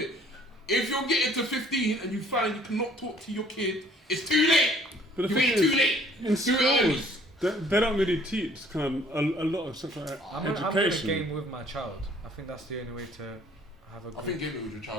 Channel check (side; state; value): both; normal; correlation 0.57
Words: If you're getting to 15 and you find you cannot talk to your kid, it's too late. But the You thing ain't is, too late. in Do it early. schools, they don't really teach kind of a lot of sexual I'm gonna education. game with my child. I think that's the only way to have a I good. think gaming with your